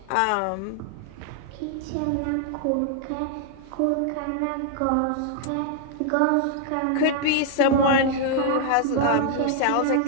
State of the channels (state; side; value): different; both; correlation 0.00